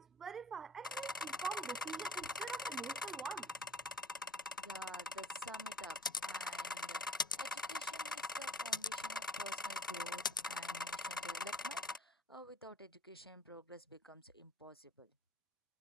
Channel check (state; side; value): normal; both; correlation 0.51